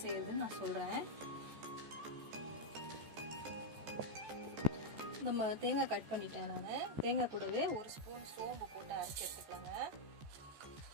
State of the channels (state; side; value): late; left; 14 ms